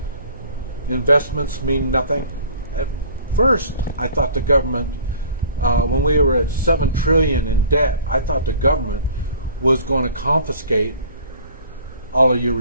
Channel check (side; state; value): both; inverted; correlation -0.48